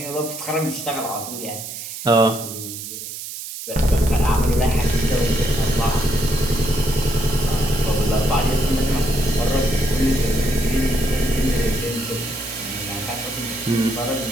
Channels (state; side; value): noise; right; hiss, 9 dB below the sound